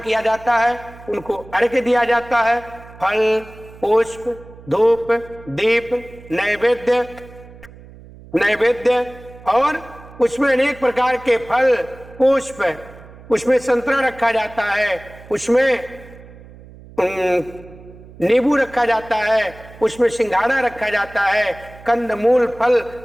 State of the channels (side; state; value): right; noise; hum, 20 dB below the sound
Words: जाता है, उनको अर्घ्य दिया जाता है। फल, पुष्प, धूप, दीप, नैवेद्य और उसमें अनेक प्रकार के फल, पुष्प, उसमें संतरा रखा जाता है, उसमें नींबू रखा जाता है, उसमें सिंघाड़ा रखा जाता है, कंदमूल फल,